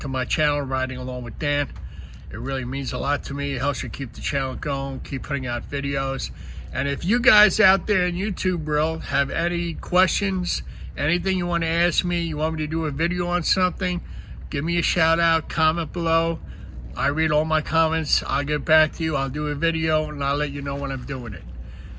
my channel, Riding Along with Dan. It really means a lot to me. It helps you keep the channel going, keep putting out videos. And if you guys out there in YouTube world have any questions, anything you want to ask me, you want me to do a video on something, give me a shout out, comment below. I read all my comments. I'll get back to you. I'll do a video and I'll let you know when I'm doing it.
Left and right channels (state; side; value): identical; both; correlation 1.00